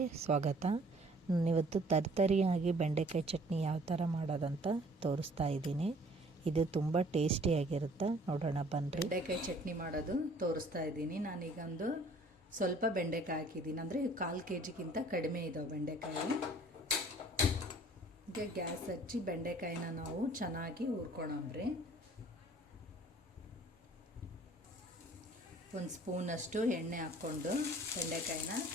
ಸ್ವಾಗತ. ನಾನಿವತ್ತು ತರ್ತರಿಯಾಗಿ ಬೆಂಡೆಕಾಯಿ ಚಟ್ನಿ ಯಾವ ಥರ ಮಾಡೋದಂತ ತೋರಿಸ್ತಾ ಇದ್ದೀನಿ. ಇದು ತುಂಬ ಟೇಸ್ಟಿಯಾಗಿರುತ್ತೆ. ನೋಡೋಣ ಬನ್ನಿರಿ. ಬೆಂಡೆಕಾಯಿ ಚಟ್ನಿ ಮಾಡೋದು ತೋರಿಸ್ತಾ ಇದ್ದೀನಿ. ನಾನೀಗೊಂದು ಸ್ವಲ್ಪ ಬೆಂಡೆಕಾಯಿ ಹಾಕಿದ್ದೀನಿ, ಅಂದರೆ 1/4 kgಗಿಂತ ಕಡಿಮೆ ಇದ್ದಾವೆ ಬೆಂಡೆಕಾಯಿ. ಈಗ ಗ್ಯಾಸ್ ಹಚ್ಚಿ ಬೆಂಡೆಕಾಯಿನ ನಾವು ಚೆನ್ನಾಗಿ ಹುರ್ಕೊಳಮ್ರಿ. ಒಂದು ಸ್ಪೂನಷ್ಟು ಎಣ್ಣೆ ಹಾಕ್ಕೊಂಡು ಬೆಂಡೆಕಾಯಿನ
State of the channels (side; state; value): both; normal; correlation 0.54